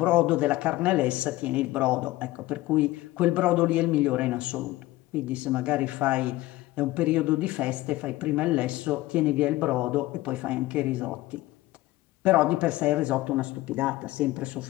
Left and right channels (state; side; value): quieter; right; 18.0 dB